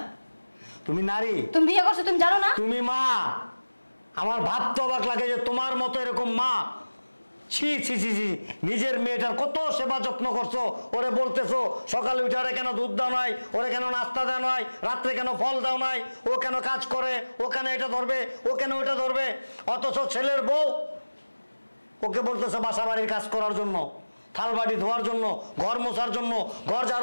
তুমি নারী, তুমি বিয়ে করছো তুমি জানো না? তুমি মা। আমার ভাবতে অবাক লাগে যে তোমার মতো এরকম মা, ছি ছি ছি ছি, নিজের মেয়েটার কত সেবা যত্ন করছো। ওরে বলতেছো সকালে উঠে ওরে কেন দুধ দাও নাই, ওরে কেন নাস্তা দেওয়া নাই, রাত্রে কেন ফল দাও নাই, ও কেন কাজ করে, ও কেন এটা ধরবে, ও কেন ওইটা ধরবে। অথচ ছেলের বউ ওকে বলতেছে বাসা বাড়ির কাজ করার জন্য, থাল বাড়ি ধোয়ার জন্য, ঘর মোছার জন্য, ঘর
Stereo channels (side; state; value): both; inverted; correlation -1.00